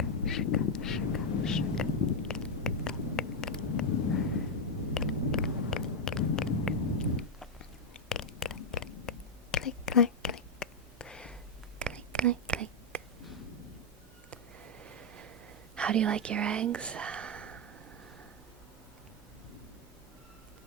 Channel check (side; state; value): both; normal; correlation 0.02